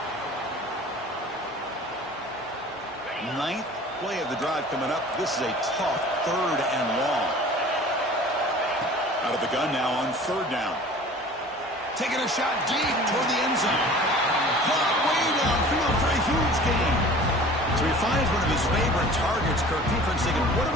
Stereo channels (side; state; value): both; normal; correlation 0.44